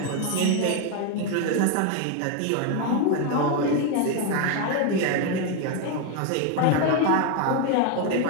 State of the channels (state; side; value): different; both; correlation 0.01